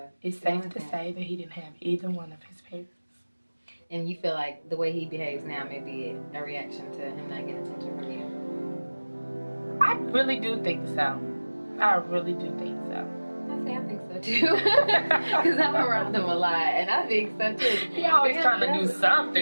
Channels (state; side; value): inverted; both; correlation -1.00